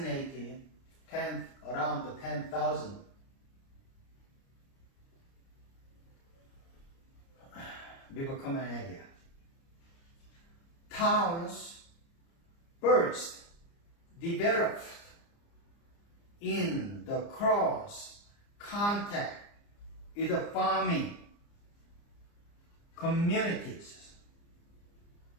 around 10,000 before common area. Towns first developed in the cross contact with the farming communities,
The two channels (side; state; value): right; late; 29 ms